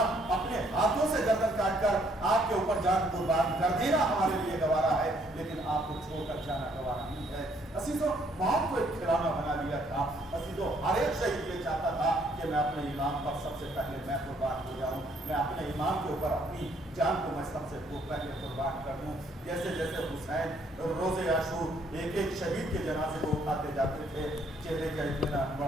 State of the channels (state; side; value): normal; both; correlation 0.66